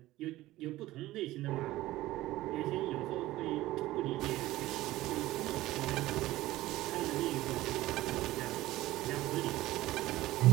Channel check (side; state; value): left; quieter; 16.7 dB